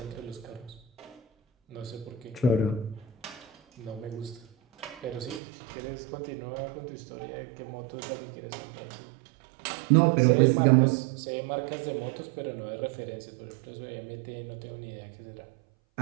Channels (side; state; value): left; drops out; at 5.4 s